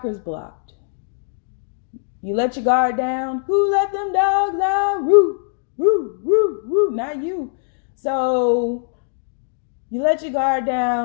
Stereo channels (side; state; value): right; silent; digital silence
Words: blocked. You let your guard down. Who let them dogs out? Woo, woo, woo, woo. Not you. So you let your guard